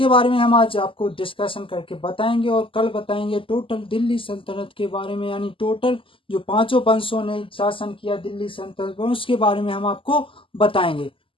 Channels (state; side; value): late; right; 0.25 ms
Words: बारे में हम आज आपको डिस्कशन करके बताएंगे और कल बताएंगे टोटल दिल्ली सल्तनत के बारे में, यानी टोटल जो पांचों वंशों ने शासन किया दिल्ली सल्तनत पर उसके बारे में हम आपको बताएंगे।